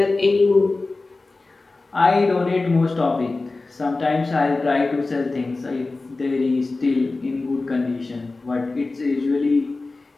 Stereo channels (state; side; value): quieter; right; 3.4 dB